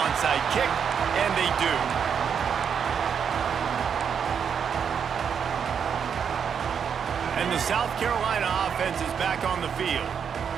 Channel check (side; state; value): left; quieter; 7.3 dB